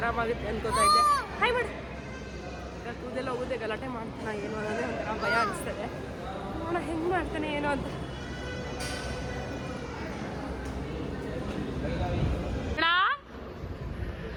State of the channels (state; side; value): identical; both; correlation 1.00